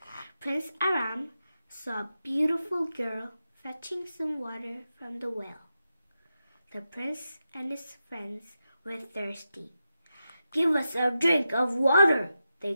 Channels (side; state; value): both; inverted; correlation -0.89